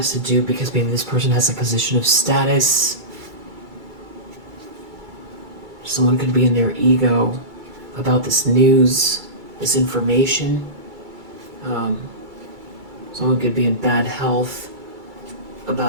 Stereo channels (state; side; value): late; left; 2.3 ms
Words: to do because maybe this person has a position of status. Someone could be in their ego about this news, this information. Someone could be in bad health